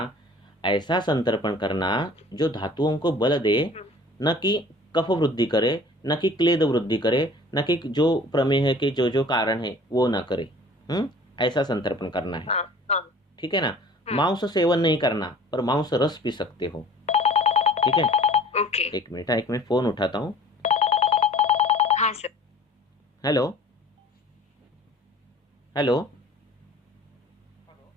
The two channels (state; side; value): normal; both; correlation 0.47